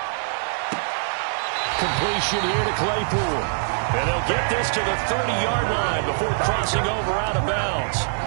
Completion here to Claypool. And they'll get this to the 30-yard line before crossing over out of bounds.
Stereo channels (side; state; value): left; silent; digital silence